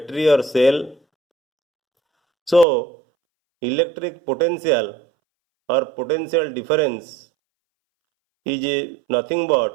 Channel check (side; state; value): left; drops out; at 2.7 s